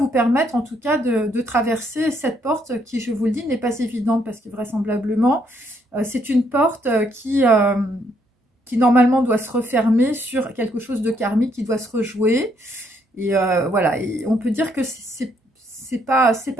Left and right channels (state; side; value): normal; both; correlation 0.71